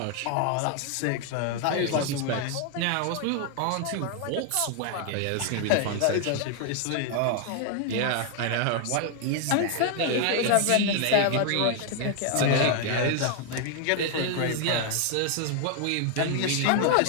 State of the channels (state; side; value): different; both; correlation 0.00